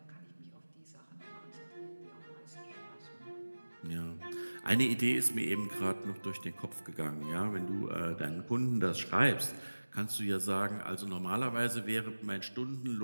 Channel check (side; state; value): both; inverted; correlation -1.00